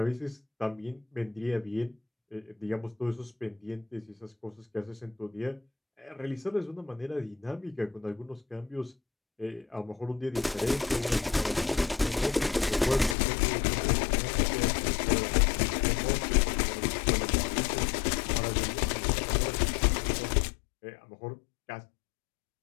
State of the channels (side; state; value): right; drops out; at 13.2 s